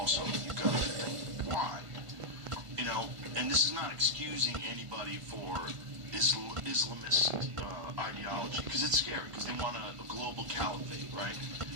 you got to think why. You know, and this is not excusing anybody for Islamist ideology, because it's scary, because they want a global caliphate, right?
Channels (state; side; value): late; left; 1.5 ms